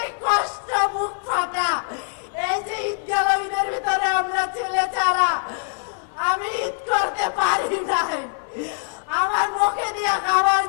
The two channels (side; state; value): right; silent; 56 dB below the other